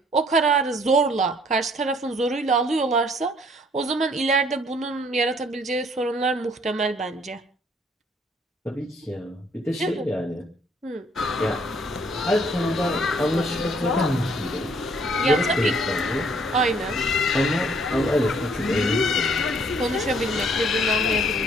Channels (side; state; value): both; normal; correlation 0.62